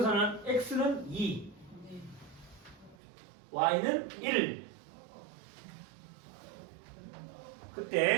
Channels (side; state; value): left; drops out; at 3.0 s